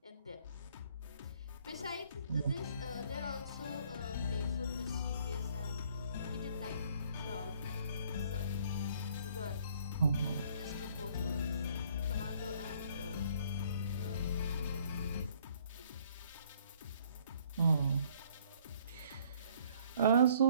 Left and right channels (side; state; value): both; inverted; correlation -0.60